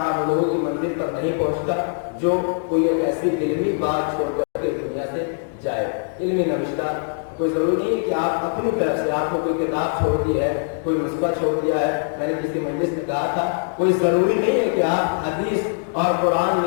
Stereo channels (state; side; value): silent; right; digital silence